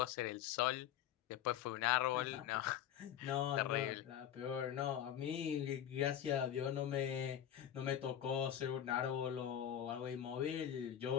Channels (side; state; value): right; quieter; 10.5 dB